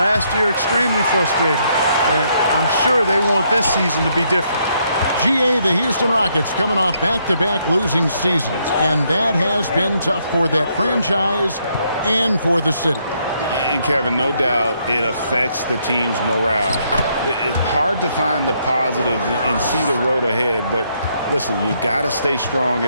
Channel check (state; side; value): inverted; both; correlation -0.73